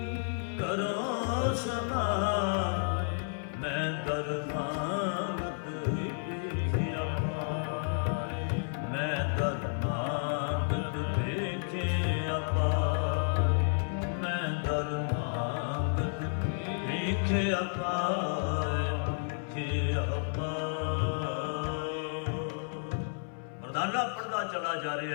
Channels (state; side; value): silent; right; 57 dB below the other